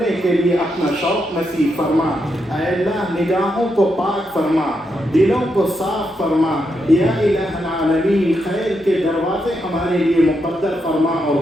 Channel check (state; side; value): normal; both; correlation 0.82